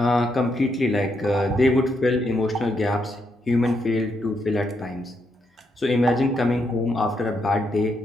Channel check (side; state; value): both; normal; correlation 0.79